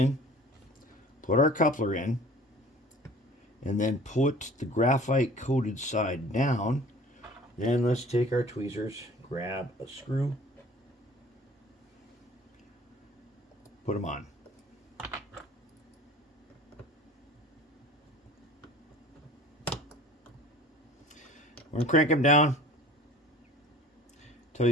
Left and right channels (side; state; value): both; normal; correlation 0.46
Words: put our coupler in, and then put the graphite coated side down Then let's take our tweezers, grab a screw, put them on. We're going to crank him down until